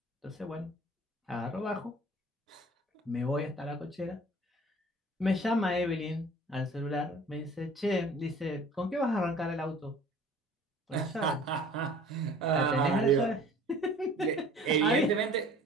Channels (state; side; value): normal; both; correlation 0.48